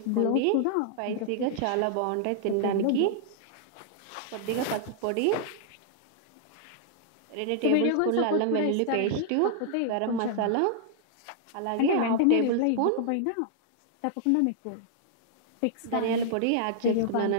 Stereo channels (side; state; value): both; different; correlation -0.01